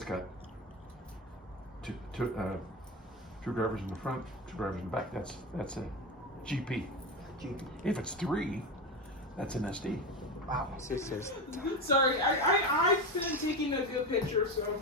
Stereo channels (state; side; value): normal; both; correlation 0.19